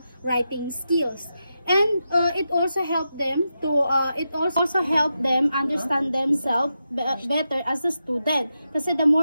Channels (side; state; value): both; inverted; correlation -0.88